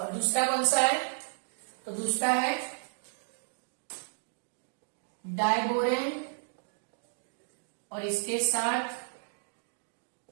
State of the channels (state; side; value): silent; left; 56 dB below the other